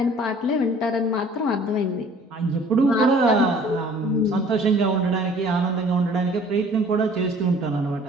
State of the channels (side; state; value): both; normal; correlation 0.52